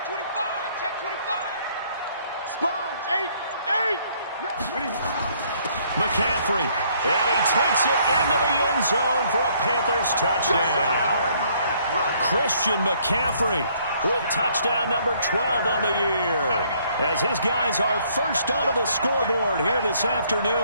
25, check 25. Sponge, 8. McCaffrey, and he takes it into the end zone for a Panthers touchdown. Christian McCaffrey with touchdown number 12 on the year, as his guys are first onto the scoreboard here this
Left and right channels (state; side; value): inverted; both; correlation -0.65